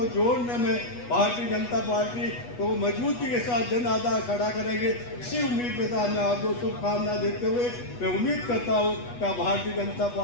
जोड़ने में भारतीय जनता पार्टी को मजबूती के साथ जन आधार खड़ा करेंगे। इसी उम्मीद के साथ मैं आपको शुभकामना देते हुए मैं उम्मीद करता हूँ कि आप भारतीय जनता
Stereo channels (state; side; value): late; right; 8.2 ms